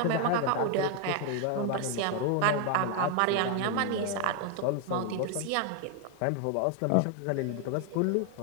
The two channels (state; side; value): different; both; correlation 0.01